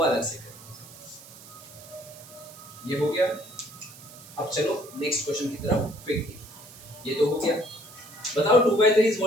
अलग से करें। ये हो गया। अब चलो नेक्स्ट क्वेश्चन की तरफ क्विकली। ये तो हो गया। बताओ 2/3 इज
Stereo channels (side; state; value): right; noise; hiss, 18 dB below the sound